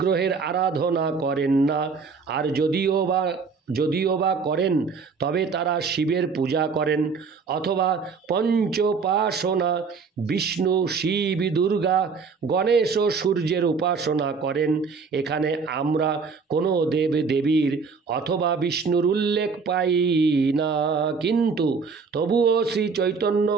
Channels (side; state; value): left; quieter; 5.1 dB